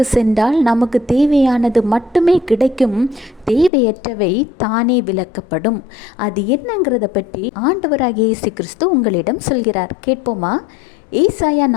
சென்றால் நமக்கு தேவையானது மட்டுமே கிடைக்கும், தேவையற்றவை தானே விலக்கப்படும். அது என்னங்கிறத பற்றி ஆண்டவராகிய இயேசு கிறிஸ்து உங்களிடம் சொல்கிறார். கேட்போமா? ஏசாயா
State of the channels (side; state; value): right; drops out; at 3.7 s